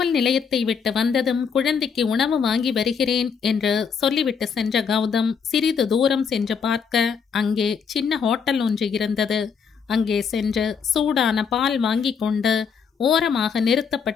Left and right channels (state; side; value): quieter; right; 6.4 dB